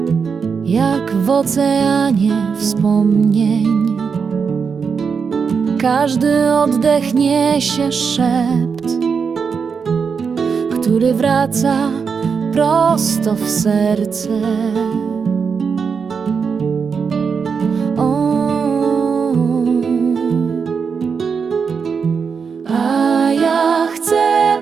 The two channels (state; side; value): quieter; left; 5.9 dB